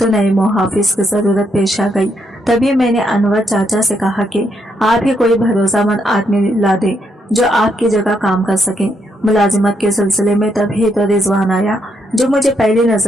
नए मुहाफिज की जरूरत पेश आ गई। तभी मैंने अनवर चाचा से कहा कि आप ही कोई भरोसामंद आदमी ला दे जो आपकी जगह काम कर सके। मुलाजिमत के सिलसिले में तभी तो रिजवान आया, जो मुझे पहली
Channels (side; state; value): both; normal; correlation 0.76